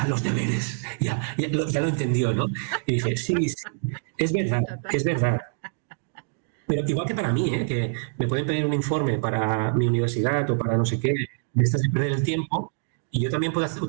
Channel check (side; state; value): left; silent; digital silence